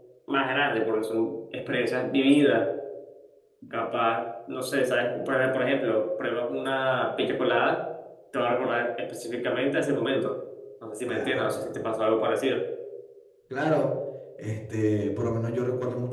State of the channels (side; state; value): both; identical; correlation 1.00